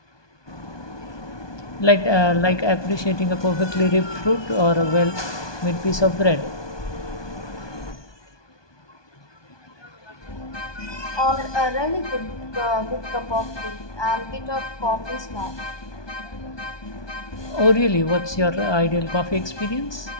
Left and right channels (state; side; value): late; right; 1.2 ms